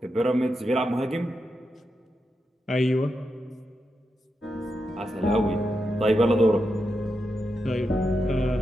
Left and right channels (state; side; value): normal; both; correlation 0.87